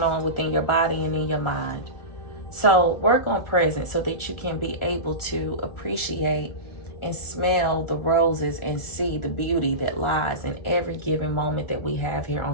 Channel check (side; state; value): right; late; 1.4 ms